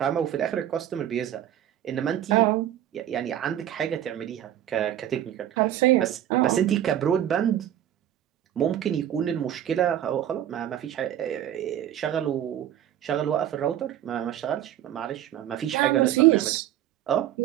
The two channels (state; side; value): quieter; left; 11.4 dB